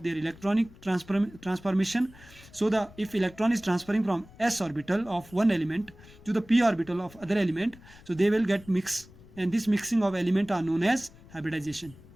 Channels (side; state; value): left; noise; rumble, 22 dB below the sound